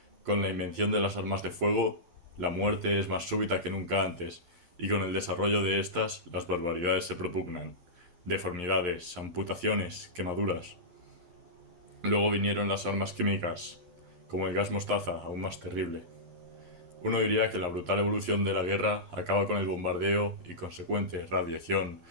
Con la invención de las armas de fuego, la muerte es más súbita que nunca antes, y con el desarrollo de estas, las barbaridades se propugnan. Deformidades, amputaciones, quemaduras. Luego vinieron las armas químicas, como el gas mostaza, aún más terrible. Uno diría que la brutal evolución de la guerra acaba con el bombardeo y consecuente radiación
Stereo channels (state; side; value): late; left; 11 ms